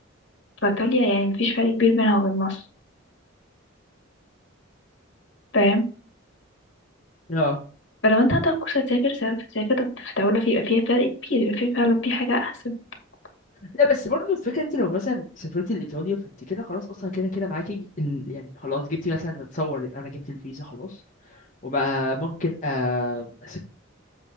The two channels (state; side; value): normal; both; correlation 0.19